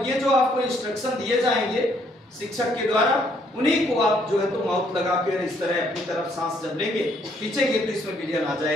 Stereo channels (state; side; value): normal; both; correlation 0.68